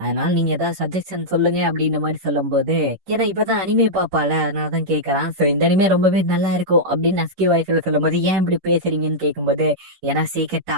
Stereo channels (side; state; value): left; late; 11 ms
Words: நீங்க ஏதாவது சஜஷன் சொல்லுங்க அப்படின்ற மாதிரி சொல்லும் போது ஏன்னா இப்பதான் அனிமே பாப்பால அதனாலதான் கேட்கறான். சோ இந்த அனிமே ரொம்பவே நல்லா இருக்கும் அப்படின்னு நஸ்கி வாய்ஸ்ல சொல்லும் போது ஏன் இப்படி பேசுறீங்கன்னு கேட்கும்போது ஏன்னா சீக்கிரட்